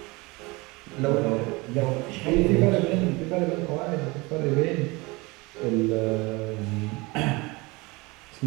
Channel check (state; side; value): quieter; left; 24.5 dB